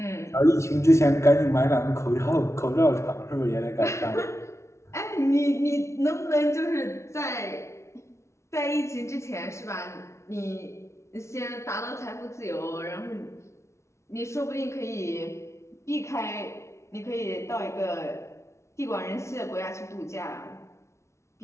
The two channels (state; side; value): late; right; 0.13 ms